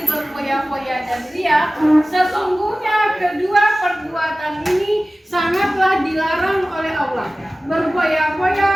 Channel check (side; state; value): both; normal; correlation 0.97